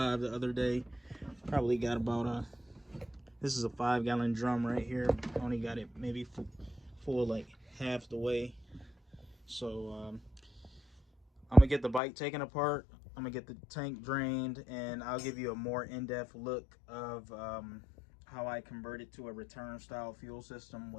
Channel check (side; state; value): right; drops out; at 12.0 s